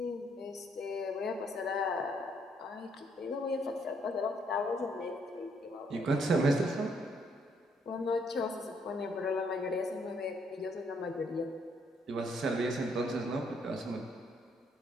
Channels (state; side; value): normal; both; correlation 0.70